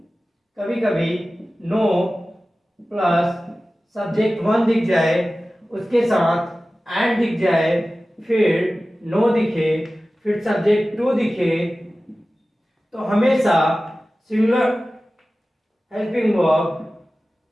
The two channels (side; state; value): both; normal; correlation 0.96